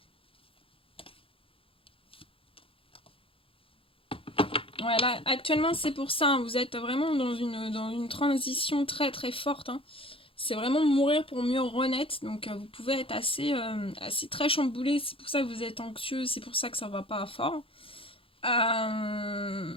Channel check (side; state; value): right; late; 0.26 ms